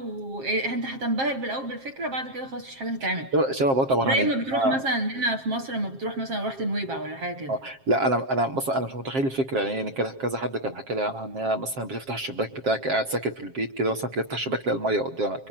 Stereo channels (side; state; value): left; late; 7.5 ms